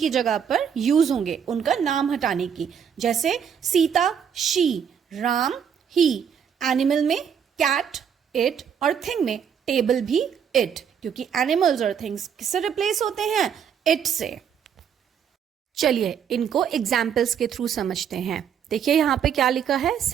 जगह पर use होंगे उनका नाम हटाने की. जैसे Sita she, Ram he. Animal में कैट इट और थिंग में टेबल भी इट, क्योंकि एनिमल्स और थिंग्स किससे रिप्लेस होते हैं? इट से. चलिए इनको एग्जाम्पल्स के थ्रू समझते हैं. देखिए यहाँ पे क्या लिखा है,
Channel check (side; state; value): left; quieter; 7.9 dB